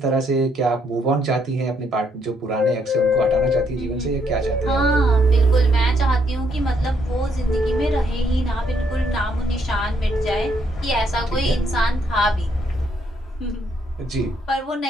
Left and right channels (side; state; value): both; normal; correlation 0.72